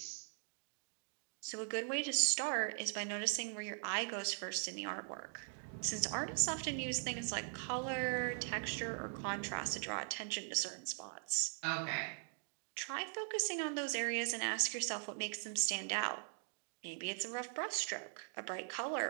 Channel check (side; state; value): left; silent; 50 dB below the other